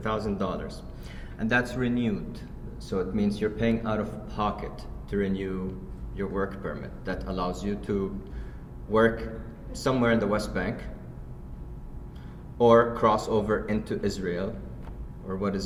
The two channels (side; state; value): both; identical; correlation 1.00